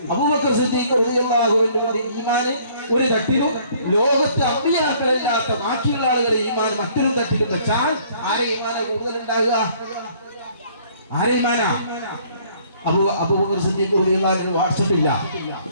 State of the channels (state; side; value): inverted; both; correlation -0.59